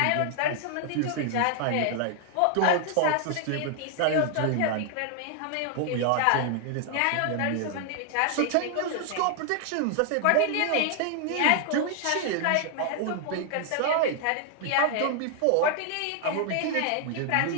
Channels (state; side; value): different; both; correlation 0.00